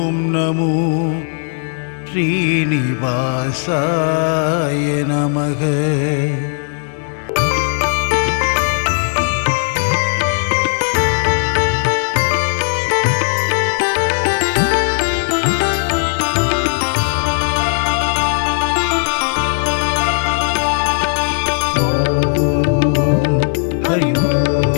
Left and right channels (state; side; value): silent; right; digital silence